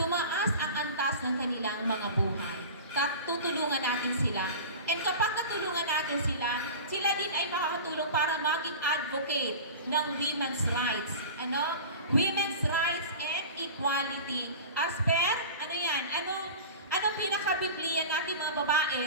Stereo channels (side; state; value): both; inverted; correlation -0.34